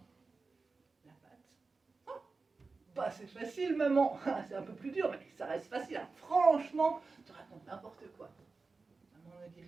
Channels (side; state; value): left; quieter; 4.1 dB